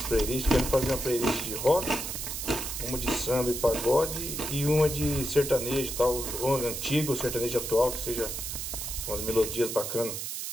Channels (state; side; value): noise; right; hiss, 5 dB below the sound